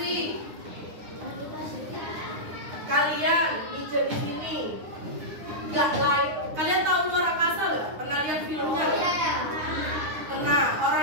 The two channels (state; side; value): late; left; 9.7 ms